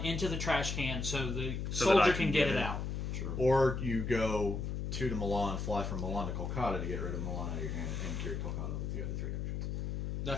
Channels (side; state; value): left; noise; hum, 3 dB below the sound